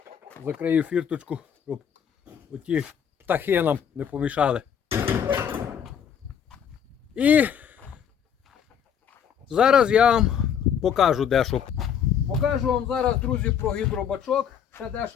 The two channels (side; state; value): right; quieter; 8.2 dB